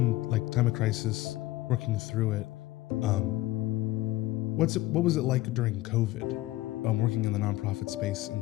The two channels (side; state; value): right; quieter; 17.6 dB